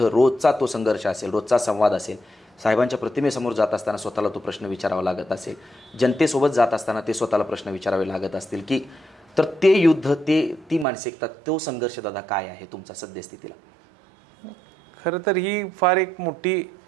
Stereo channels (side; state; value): left; drops out; at 10.9 s